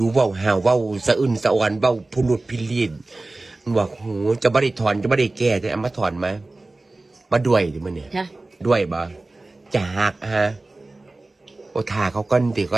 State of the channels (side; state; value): left; quieter; 3.0 dB